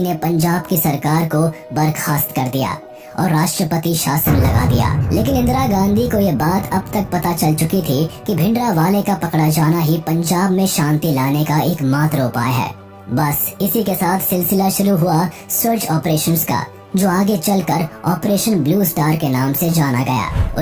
ने पंजाब की सरकार को बर्खास्त कर दिया और राष्ट्रपति शासन लगा दिया। लेकिन इंदिरा गांधी को ये बात अब तक पता चल चुकी थी कि भिंडरावाले का पकड़ा जाना ही पंजाब में शांति लाने का एकमात्र उपाय है। बस इसी के साथ सिलसिला शुरू हुआ सर्च ऑपरेशंस का, जो आगे चलकर ऑपरेशन ब्लू स्टार के नाम से जाना गया।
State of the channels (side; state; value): both; identical; correlation 1.00